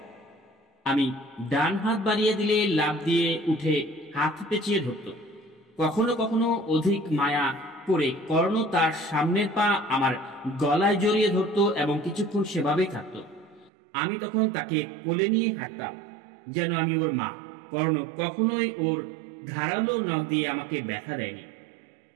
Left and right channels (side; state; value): left; drops out; at 13.7 s